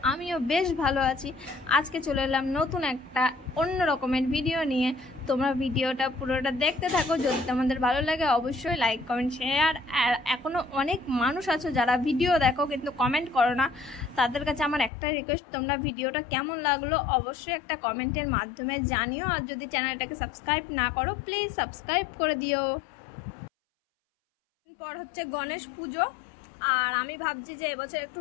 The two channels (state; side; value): drops out; right; at 14.9 s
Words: আমিও বেশ ভালো আছি। আজকে চলে এলাম নতুন একটা অন্য রকমের ভিডিও নিয়ে। তোমরা ভিডিওটা পুরোটা দেখতে থাকো। যদি তোমাদের ভালো লাগে অবশ্যই লাইক কমেন্ট শেয়ার। আর এখনও অনেক মানুষ আছো যারা ভিডিও দেখো কিন্তু কমেন্ট করো না। তাদের কাছে আমার একটা রিকোয়েস্ট, তোমরা ভিডিওটা কেমন লাগলো অবশ্যই একটা কমেন্টের মাধ্যমে জানিও। আর যদি চ্যানেলটাকে সাবস্ক্রাইব না করো প্লিজ সাবস্ক্রাইব করে দিও। পর হচ্ছে গণেশ পুজো, আর আমি ভাবছি যে এবছর একটু